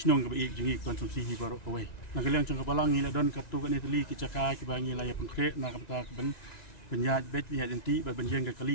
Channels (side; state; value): right; late; 1.9 ms